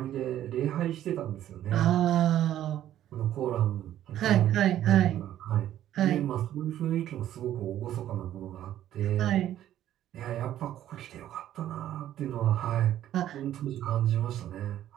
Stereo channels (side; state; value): left; quieter; 12.1 dB